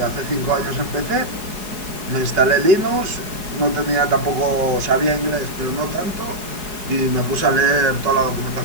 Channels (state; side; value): late; left; 4.8 ms